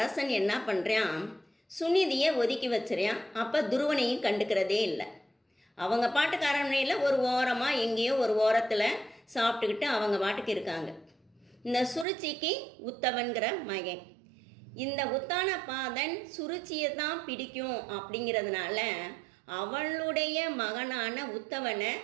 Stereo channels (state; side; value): drops out; left; at 12.1 s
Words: என்ன பண்ணுறான், சுனிதியை ஒதுக்கி வச்சுறான். அப்போ துருவனையும் கண்டுக்கிறதே இல்லை. அவங்க பாட்டுக்கு அரண்மனையில் ஒரு ஓரமாக எங்கேயோ ஒரு ஓரத்தில் சாப்பிட்டுக்கிட்டு அவங்க பாட்டுக்கு இருக்காங்க. இந்த சுருச்சிக்கு உத்தவன்கிற மகன். இந்த உத்தானபாதன் சுருச்சியை தான் பிடிக்கும் அப்படிங்கிறதுனால அவளுடைய மகனான உத்தவனை